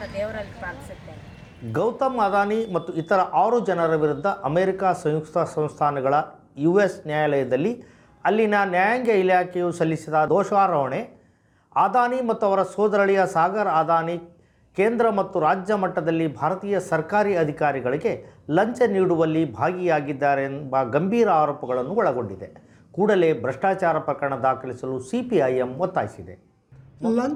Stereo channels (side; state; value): both; identical; correlation 1.00